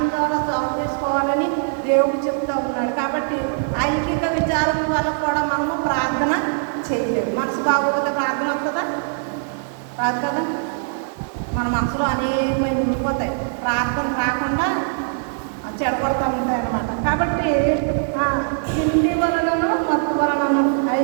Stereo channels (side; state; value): left; silent; digital silence